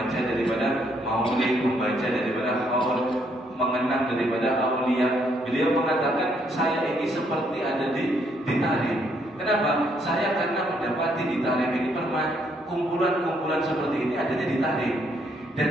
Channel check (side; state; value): both; normal; correlation 0.71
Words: daripada maulid, membaca daripada haul, mengenang daripada aulia, beliau mengatakan saya ini seperti ada ditarik. Kenapa? Saya karena mendapati ditarik ini kumpulan-kumpulan seperti ini adanya ditarik.